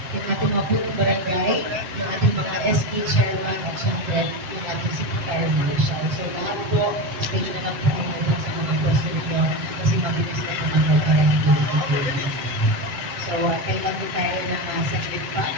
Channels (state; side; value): late; left; 7.9 ms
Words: yung ating mga punong barangay, yung ating mga SK chairman, at syempre yung ating city fire marshal. So lahat po, stage na lang po ang mga sa mga pwesto ninyo kasi mabilis na po mga parang So kailan po tayo ng saglit pa